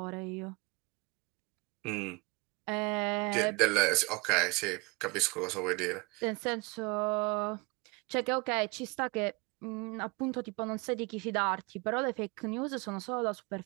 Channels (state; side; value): quieter; left; 28.0 dB